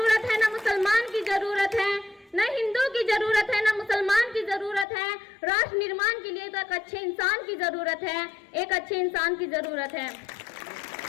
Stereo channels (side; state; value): right; drops out; at 4.9 s